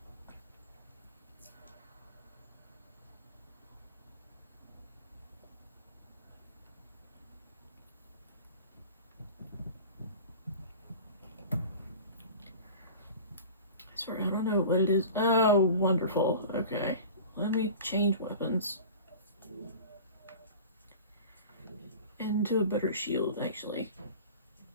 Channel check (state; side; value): inverted; both; correlation -0.38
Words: Sorry, I don't know what it is. Oh, wonderful. Okay. Let me change weapons. Into a better shield, actually.